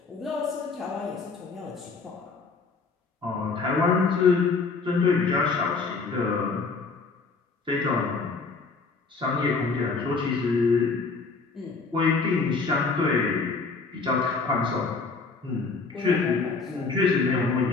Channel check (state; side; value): quieter; right; 4.3 dB